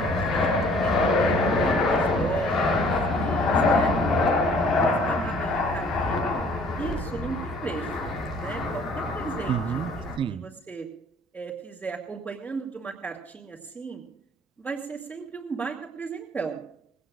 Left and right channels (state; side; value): normal; both; correlation 0.55